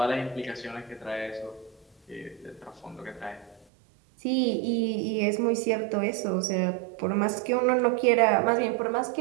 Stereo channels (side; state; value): left; drops out; at 3.7 s